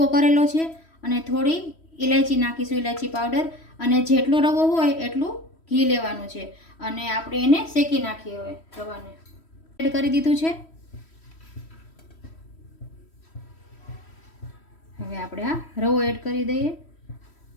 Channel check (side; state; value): right; late; 3.1 ms